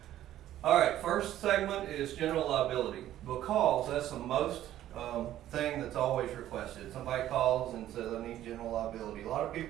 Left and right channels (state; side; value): quieter; left; 12.8 dB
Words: All right, first segment is general liability, because that's the most thing that's always requested. Somebody calls and says, I need general liability. A lot of